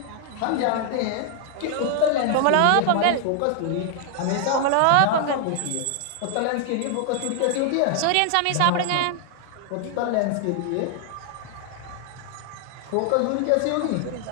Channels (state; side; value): different; both; correlation 0.00